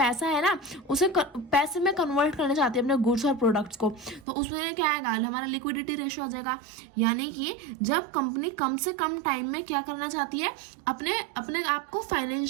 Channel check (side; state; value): left; drops out; at 4.2 s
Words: है ना, उसे पैसे में कन्वर्ट करना चाहती है, अपने गुड्स और प्रोडक्ट्स को। तो उसमें क्या आएगा, हमारा लिक्विडिटी रेशियो आ जाएगा। यानी कि जब कंपनी कम से कम टाइम में क्या करना चाहती है, अपने आप को